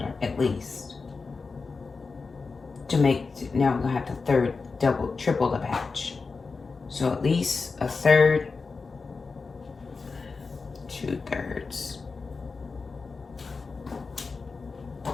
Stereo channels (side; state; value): right; quieter; 4.4 dB